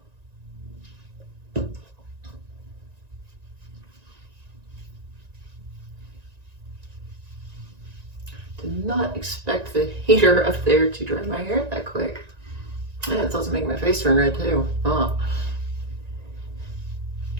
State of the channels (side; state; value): left; late; 1.9 ms